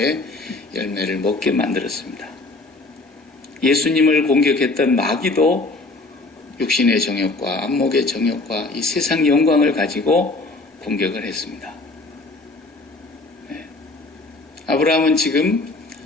열매를 먹게 만들었습니다. 예수님을 공격했던 마귀도 육신의 정욕과 안목의 정욕과 이 세상 영광을 가지고 공격을 했습니다. 아브라함은 지금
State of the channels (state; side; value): quieter; right; 3.2 dB